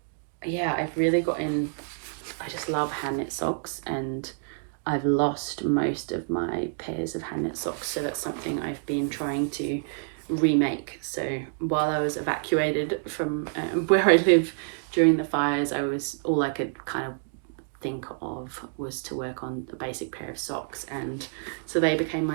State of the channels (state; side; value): silent; left; digital silence